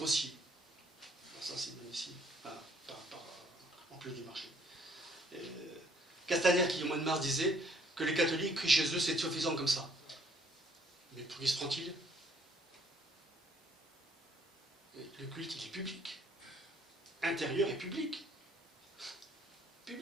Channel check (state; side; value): normal; both; correlation 0.63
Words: Alors ça, c'est magnifique. En plus du marché. Castaner, qui au mois de mars disait que les catholiques crient chez eux, c'est suffisant comme ça. Mais pour qui se prend-il? Le culte, il est public. Intérieur et public.